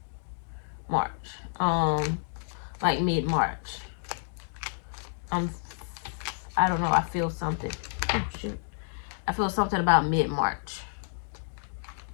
Like mid-March. I don't know, I feel something. Oh shoot. I feel something about mid-March.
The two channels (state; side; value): silent; right; digital silence